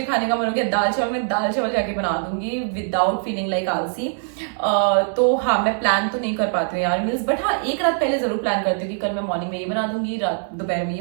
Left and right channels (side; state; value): left; silent; 64 dB below the other